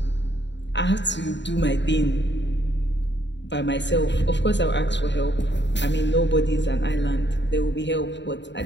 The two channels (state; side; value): late; right; 0.52 ms